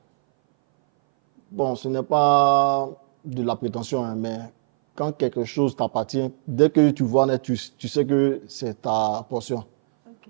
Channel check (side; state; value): left; silent; 61 dB below the other